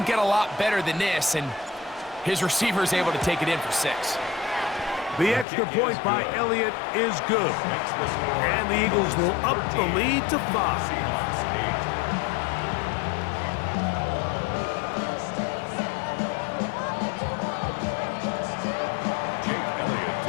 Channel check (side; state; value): right; drops out; at 5.5 s